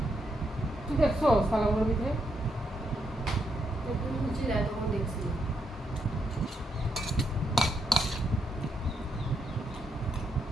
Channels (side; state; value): both; normal; correlation 0.79